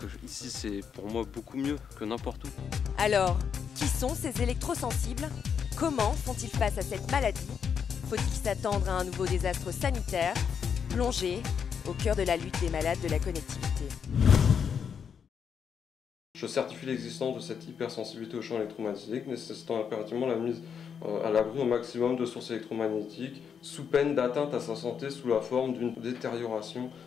ici c'est pour moi beaucoup mieux que n'importe où. Alors, qui sont ces électrosensibles? Comment font-ils face à cette maladie? Faut-il s'attendre à un nouveau désastre sanitaire? Plongé au cœur de la lutte des malades de la connectivité. Je certifie l'existence de cette hypersensibilité aux champs électromagnétiques, nécessitant impérativement la mise à l'abri au maximum de sources électromagnétiques, sous peine d'atteinte à sa santé sous la forme d'une détérioration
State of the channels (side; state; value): right; quieter; 7.1 dB